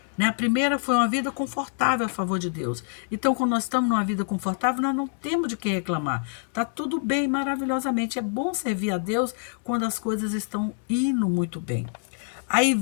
né, a primeira foi uma vida confortável a favor de Deus. Então, quando nós estamos numa vida confortável, nós não temos de que reclamar. Está tudo bem, maravilhosamente. É bom servir a Deus quando as coisas estão indo muito bem. Aí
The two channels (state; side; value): silent; right; 56 dB below the other